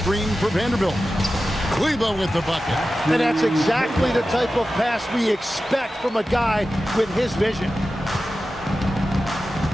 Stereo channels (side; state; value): both; normal; correlation 0.94